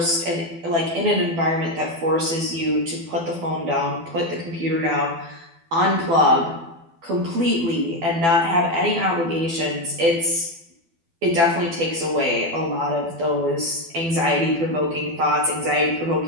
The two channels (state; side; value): late; left; 12 ms